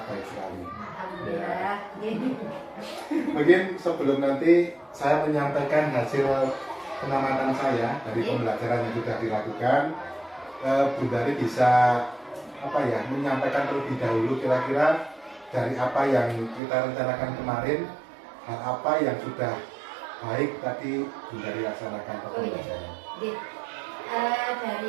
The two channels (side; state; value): left; drops out; at 16.6 s